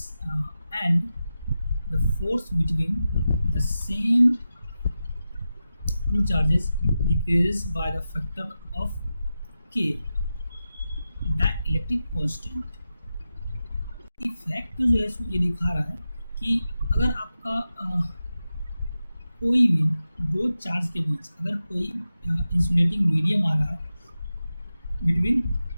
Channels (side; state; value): both; inverted; correlation -0.92